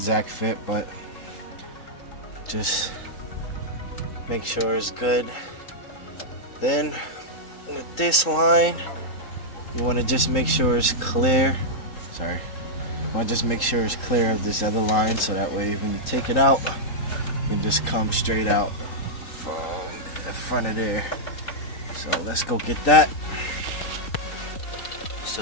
fit, but just make sure it's good. Then with this line, you want to just make sure it's clear. Sorry. You want to just make sure it's clear of this other line, so that way when you take it out, you can just come straight out from the front of there. So let's go get that.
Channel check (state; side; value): late; right; 3.7 ms